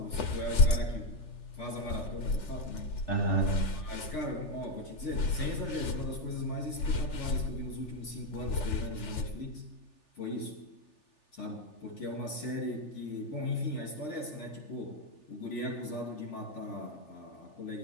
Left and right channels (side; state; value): right; late; 3.4 ms